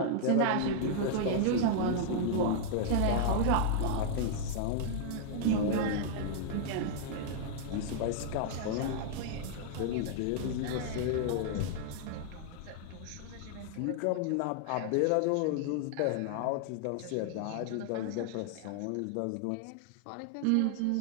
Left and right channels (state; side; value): different; both; correlation -0.01